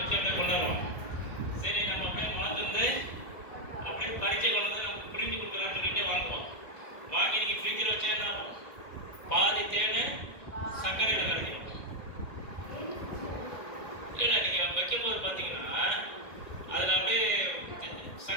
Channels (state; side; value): late; right; 1.7 ms